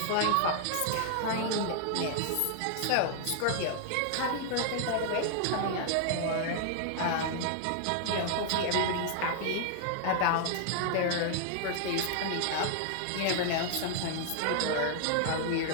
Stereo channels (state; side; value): different; both; correlation 0.00